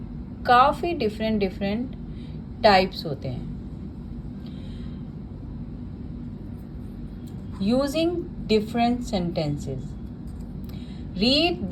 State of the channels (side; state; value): both; identical; correlation 1.00